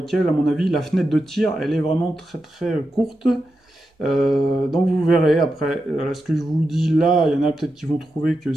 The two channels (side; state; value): both; normal; correlation 0.89